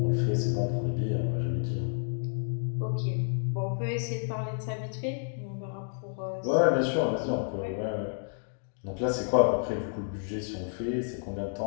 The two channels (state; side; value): silent; right; digital silence